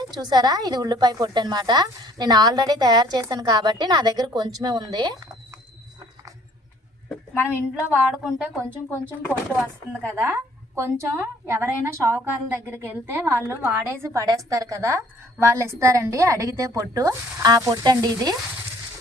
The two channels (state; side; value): normal; both; correlation 0.58